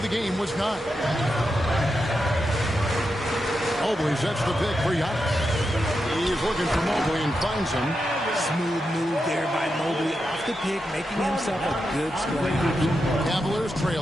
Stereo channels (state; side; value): normal; both; correlation 0.87